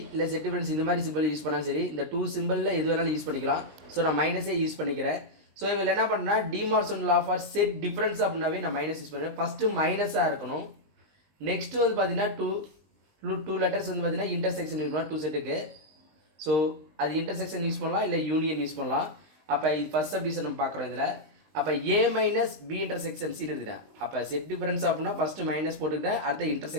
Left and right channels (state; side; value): late; left; 19 ms